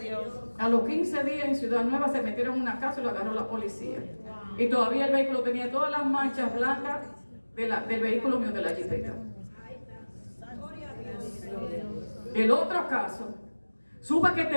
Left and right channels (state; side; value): inverted; both; correlation -1.00